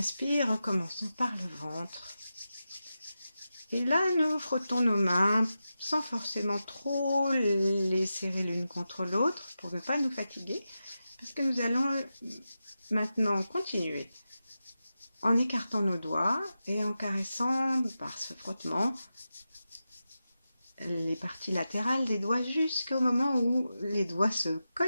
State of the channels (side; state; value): both; inverted; correlation -0.91